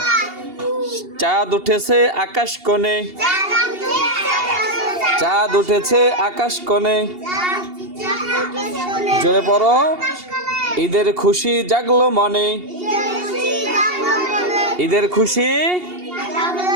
চাঁদ উঠেছে আকাশ কোণে, চাঁদ উঠেছে আকাশ কোণে। জোরে পড়ো, ঈদের খুশি জাগলো মনে, ঈদের খুশি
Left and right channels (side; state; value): left; late; 2.8 ms